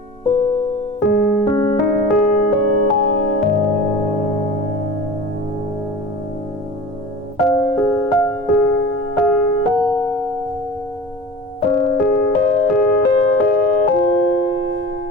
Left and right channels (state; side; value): normal; both; correlation 0.37